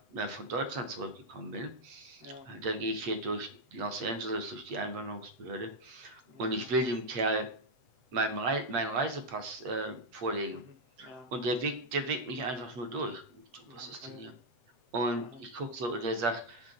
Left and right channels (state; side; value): late; left; 7.8 ms